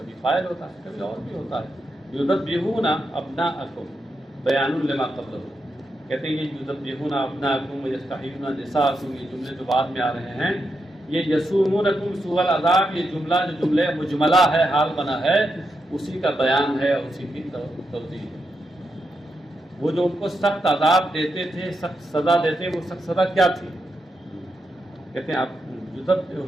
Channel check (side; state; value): both; normal; correlation 0.84